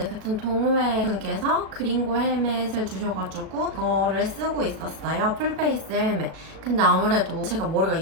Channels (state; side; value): late; left; 37 ms